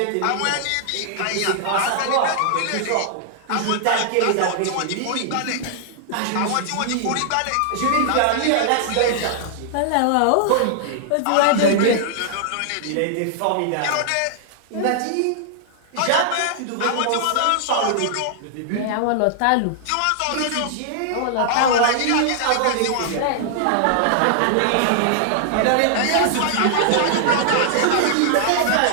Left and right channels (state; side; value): different; both; correlation -0.01